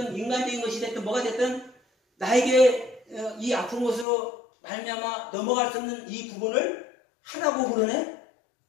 인간적인 것이 됐든 뭐가 됐든 나에게 이 아픈 것으로 말미암아 넘어갈 수 없는 이 부분을 하라고 그러네.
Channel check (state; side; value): drops out; right; at 4.0 s